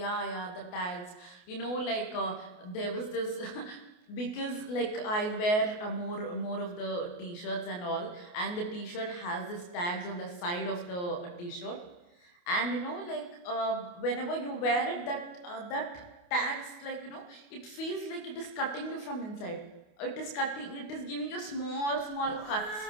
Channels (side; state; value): right; late; 28 ms